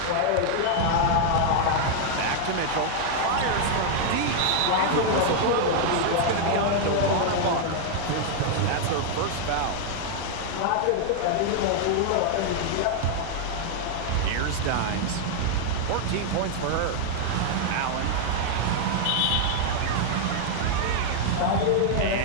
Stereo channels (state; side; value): different; both; correlation 0.00